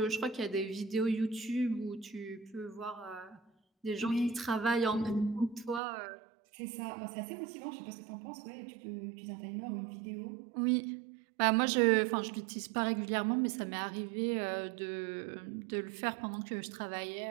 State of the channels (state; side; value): drops out; left; at 5.8 s